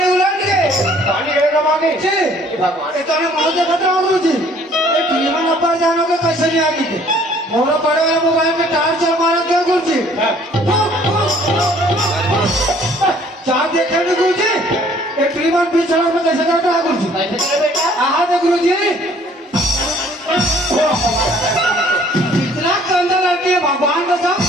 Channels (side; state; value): both; normal; correlation 0.58